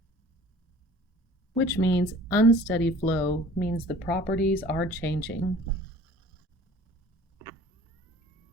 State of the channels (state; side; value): normal; both; correlation 0.48